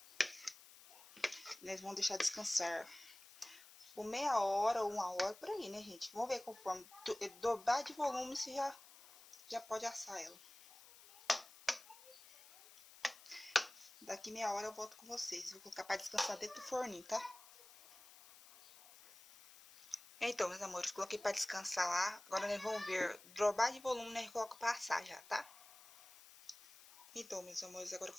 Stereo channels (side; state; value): left; noise; hiss, 20 dB below the sound